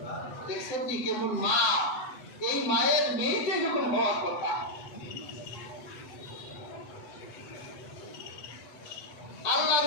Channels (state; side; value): late; right; 8.1 ms